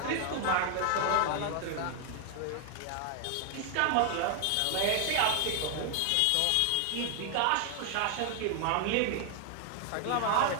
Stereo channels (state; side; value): different; both; correlation 0.00